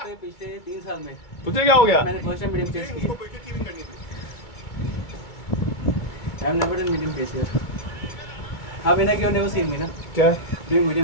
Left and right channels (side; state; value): right; late; 2.3 ms